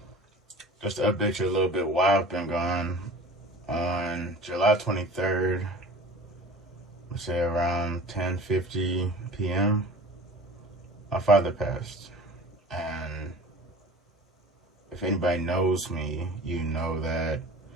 Just to update you a little bit while I've been gone, on July 23rd, let's say around 10:50 p.m., my father passed. And if anybody knows me, you know that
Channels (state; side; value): normal; both; correlation 0.41